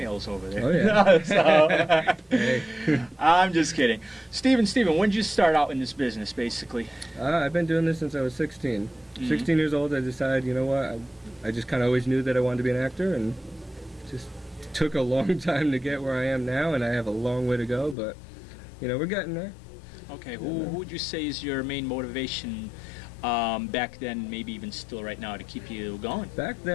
over there. Oh, yeah. So, Hey. I'm just kidding. Steven, when did you start out in this business, basically? I've been doing this since I was 16. 16 years old, I decided, you know what, I just kind of always knew that I wanted to be an actor, and just took a long time to get where I am now, and I have a long way to go, but, you know, we're getting there. Okay, who would you say is your main motivation back then, maybe even still right now, to keep you going? Back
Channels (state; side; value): drops out; right; at 17.9 s